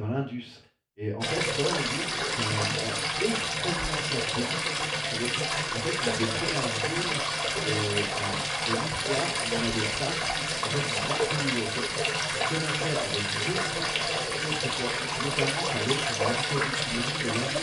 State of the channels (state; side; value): identical; both; correlation 1.00